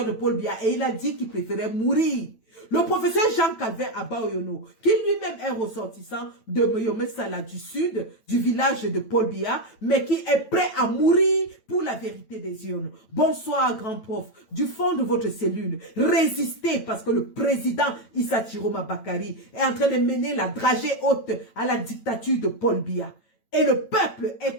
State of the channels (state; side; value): late; right; 9.0 ms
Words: de Paul Biya. Et il a dit qu'il préférait mourir. Le professeur Jean-Calvin Abaoyono, qui lui-même est ressortissant de Moyome Sala du sud, du village de Paul Biya, mais qui est prêt à mourir pour la vérité des urnes. Bonsoir, grand prof. Du fond de votre cellule, résistez parce que le président Issa Chiroma Bakari est en train de mener la dragée haute à la dictature de Paul Biya. Et le peuple